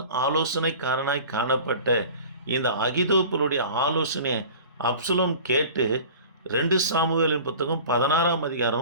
ஆலோசனைக்காரனாய் காணப்பட்ட இந்த அகிதோப்பலுடைய ஆலோசனையை அப்சலோம் கேட்டு 2 சாமுவேலின் புத்தகம் 16ஆம்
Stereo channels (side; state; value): both; inverted; correlation -0.41